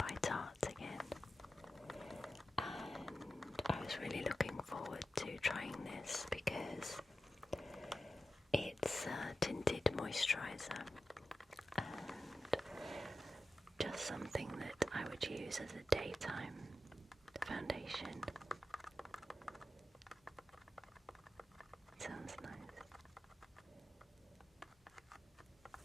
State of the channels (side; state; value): both; normal; correlation 0.92